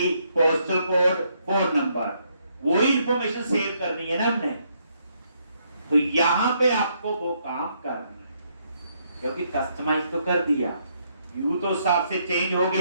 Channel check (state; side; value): inverted; both; correlation -0.73